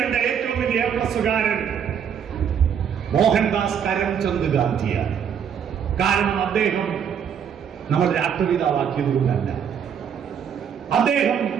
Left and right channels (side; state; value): left; quieter; 7.9 dB